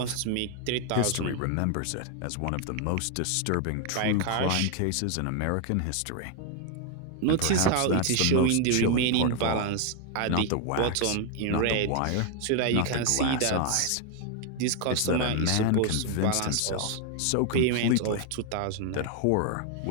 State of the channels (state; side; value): different; both; correlation 0.00